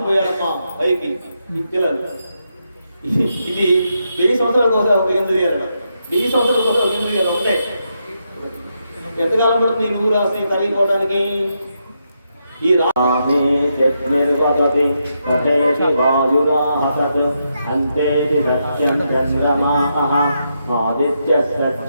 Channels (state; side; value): inverted; both; correlation -0.82